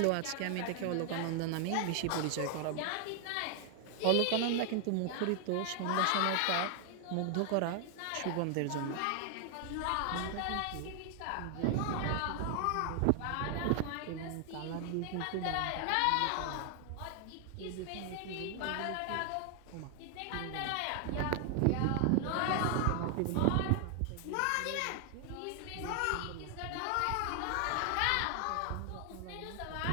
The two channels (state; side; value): different; both; correlation 0.00